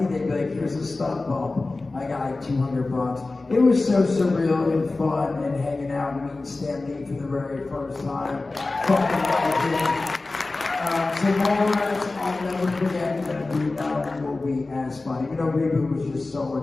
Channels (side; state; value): right; quieter; 3.3 dB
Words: they'd be like, "Here's a stunt bump." I got like $200. It was so surreal and fun, and hanging out and meeting Stan Lee for the very first time. Fucking legend. So Mallrats, I'll never forget that Reboot will be as fun. Even though Reboot was just so